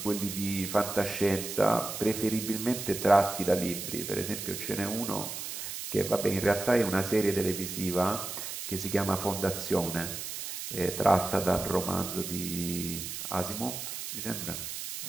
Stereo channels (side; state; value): right; noise; hiss, 6 dB below the sound